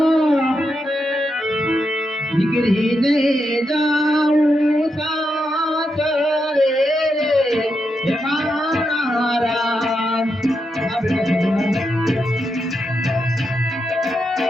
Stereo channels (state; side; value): normal; both; correlation 0.84